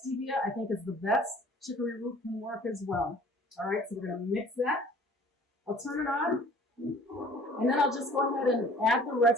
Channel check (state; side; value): normal; both; correlation 0.51